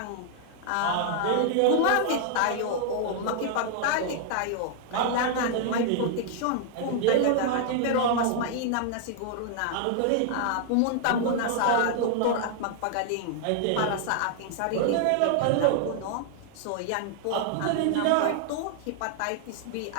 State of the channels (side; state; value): both; different; correlation -0.01